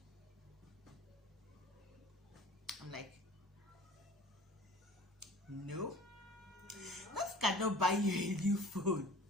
I'm like, no, that cannot buy you a new phone.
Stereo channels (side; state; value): both; normal; correlation 0.45